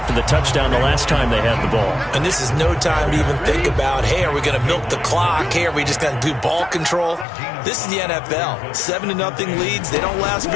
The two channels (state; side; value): drops out; right; at 7.2 s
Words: the touchdown the last time they had the ball. And this is no time to even think about, hey, are we going to milk the clock? Hey, are we just going to do ball control? This is the NFL. 7-0 leads, they don't last